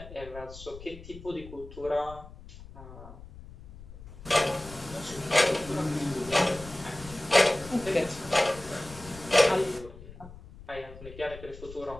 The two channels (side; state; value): left; noise; rumble, 16 dB below the sound